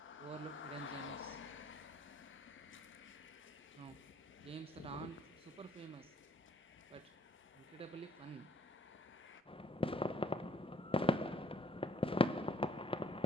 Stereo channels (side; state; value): both; normal; correlation 0.62